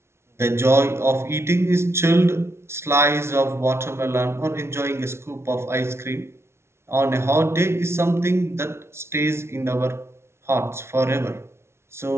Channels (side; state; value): left; late; 0.13 ms